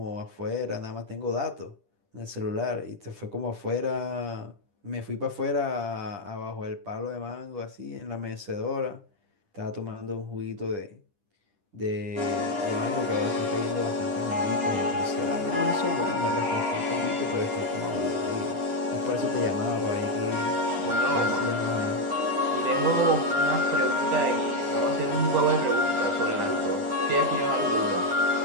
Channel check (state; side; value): late; left; 10 ms